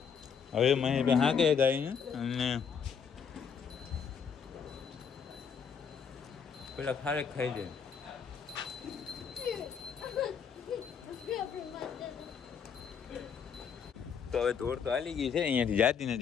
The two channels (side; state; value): right; quieter; 6.7 dB